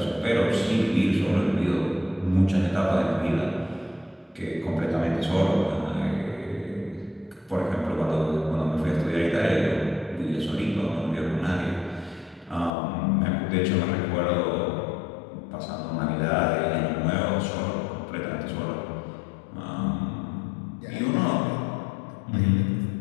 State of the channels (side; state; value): right; drops out; at 12.7 s